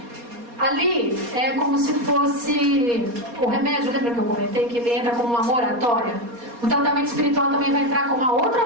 Ali é como se fosse o remédio, lembra que eu comentei que ele entra como uma moratória? O tratamento espiritual também vai entrar como uma outra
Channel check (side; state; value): left; late; 4.2 ms